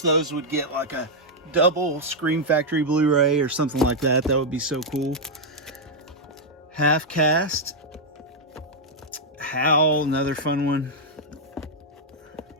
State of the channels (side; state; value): both; normal; correlation -0.03